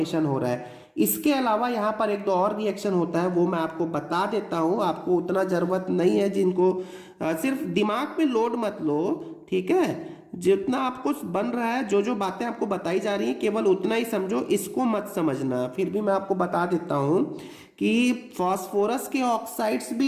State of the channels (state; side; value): identical; both; correlation 1.00